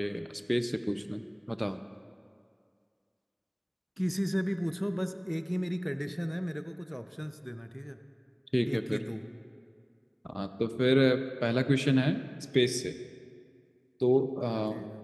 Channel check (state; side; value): identical; both; correlation 1.00